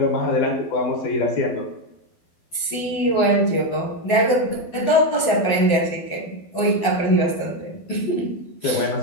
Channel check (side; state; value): right; late; 12 ms